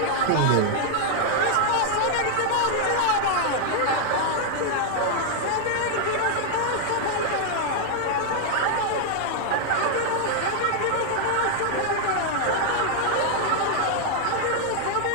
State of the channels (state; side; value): different; both; correlation 0.00